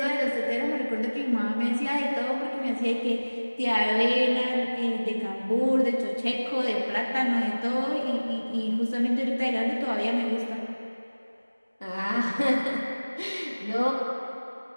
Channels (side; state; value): both; inverted; correlation -1.00